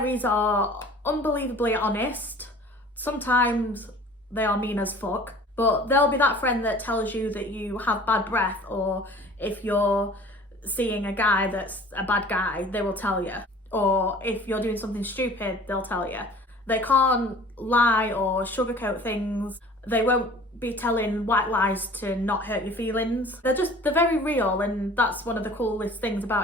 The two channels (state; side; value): normal; both; correlation 0.47